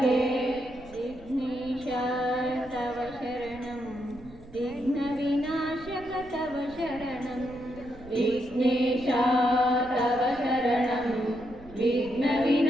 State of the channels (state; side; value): noise; right; rumble, 20 dB below the sound